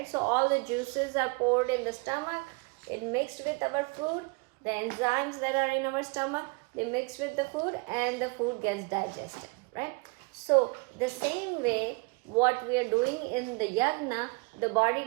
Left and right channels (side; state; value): left; quieter; 30.1 dB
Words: So all the juices are poured in the stomach, it mixed with our food, the enzymes that are in our stomach, they mix with the food and the food gets digested, right? So the same way what we are doing in the yagna, the body